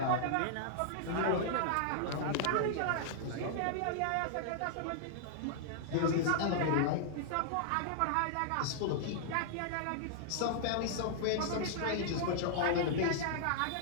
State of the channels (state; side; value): different; both; correlation -0.01